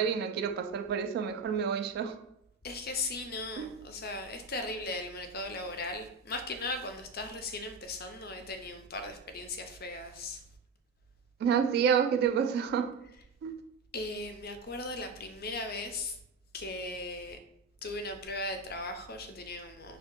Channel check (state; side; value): quieter; left; 3.8 dB